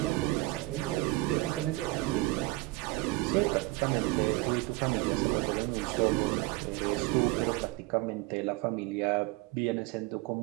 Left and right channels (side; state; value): left; quieter; 21.5 dB